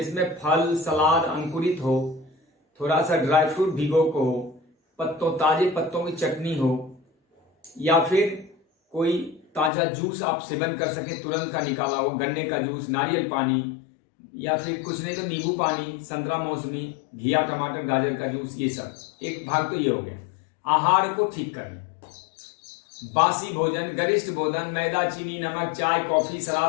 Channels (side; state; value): right; drops out; at 9.7 s